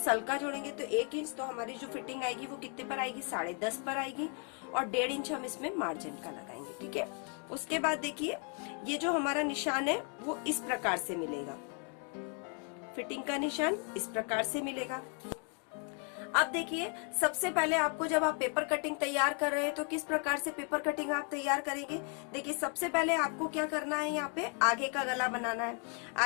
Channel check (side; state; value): right; quieter; 37.5 dB